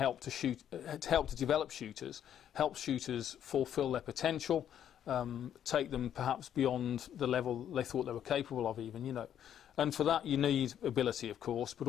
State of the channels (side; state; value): right; quieter; 9.9 dB